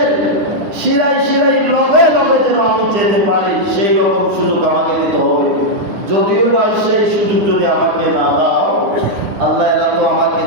শিরায় শিরায় লগে লগে যেন আমি যেতে পারি, সেই রকম সুযোগ আমাকে দিতে হবে। যদিও বা সেই সুযোগ যদি আমাকে না দাও, আল্লাহ এরা তো আমাকে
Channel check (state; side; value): late; left; 9.9 ms